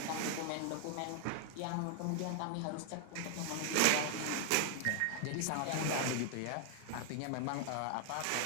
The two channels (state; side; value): different; both; correlation 0.00